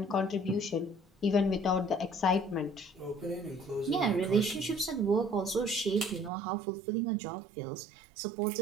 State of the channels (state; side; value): drops out; left; at 6.3 s